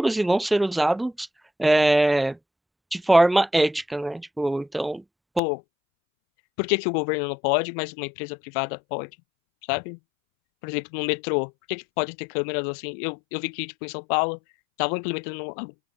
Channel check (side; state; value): right; drops out; at 5.4 s